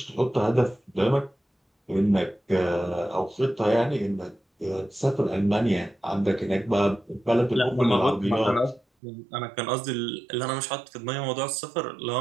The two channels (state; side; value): drops out; left; at 8.8 s